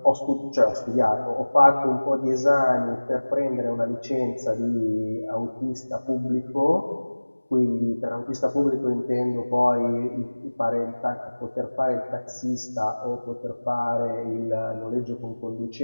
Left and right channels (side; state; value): both; inverted; correlation -1.00